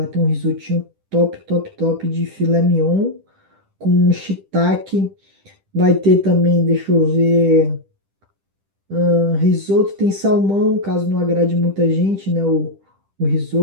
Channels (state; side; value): late; left; 10 ms